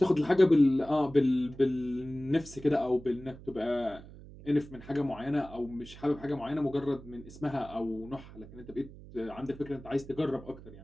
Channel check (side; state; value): right; noise; hum, 17 dB below the sound